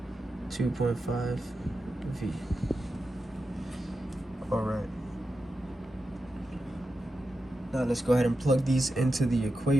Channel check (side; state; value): both; normal; correlation 0.90